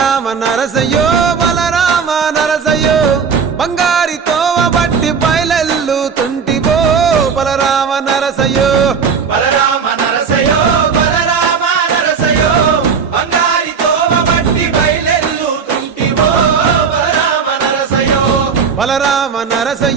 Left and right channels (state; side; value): quieter; left; 6.1 dB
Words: నరసయ్యో బలరామ నరసయ్యో బంగారి తోవ బట్టి బయలెల్లుతుంటివో బలరామ నరసయ్యో బలరామ నరసయ్యో బలరామ నరసయ్యో బంగారి తోవ బట్టి బయలెల్లుతుంటివో బలరామ నరసయ్యో బలరామ